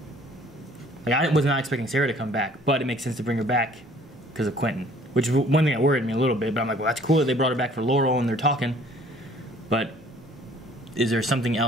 Like, I was not expecting Sarah to come back, but it makes sense to bring her back because of Quentin. Which is one thing that worried me a little bit, but I'm like, well, that's cool that they brought her back for Laurel and they're talking. But is there something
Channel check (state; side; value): normal; both; correlation 0.55